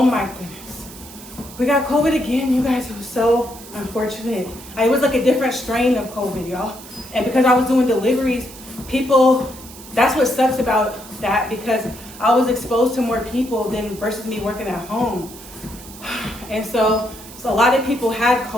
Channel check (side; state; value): right; noise; hiss, 17 dB below the sound